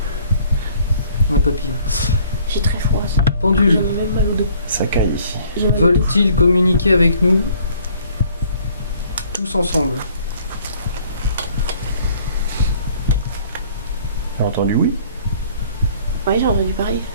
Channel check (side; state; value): both; inverted; correlation -0.58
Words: Un papillon. J'ai très froid. Ça. Pendule, J'en ai même mal au dos. Ça caille ici. J'en ai mal au dos. veulent-ils communiquer avec nous tous ensemble? T'as entendu oui? Oui, j'ai entendu pareil.